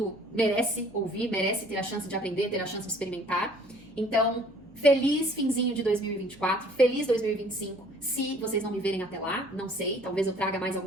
merece ouvir, merece ter a chance de aprender, ter a chance de experimentar. Então, feliz finzinho de 2024, feliz 2025, se vocês não me verem até lá, não sei, talvez eu traga mais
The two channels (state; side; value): noise; right; hum, 27 dB below the sound